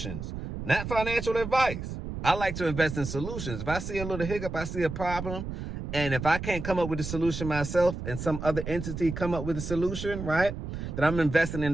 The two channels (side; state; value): right; noise; rumble, 7 dB below the sound